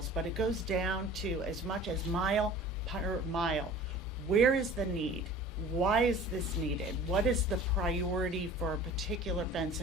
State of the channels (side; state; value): both; normal; correlation 0.43